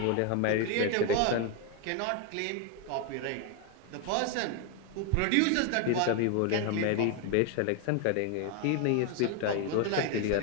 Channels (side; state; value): both; different; correlation 0.02